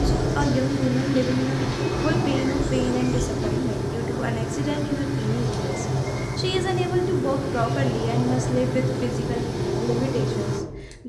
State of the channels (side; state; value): both; identical; correlation 1.00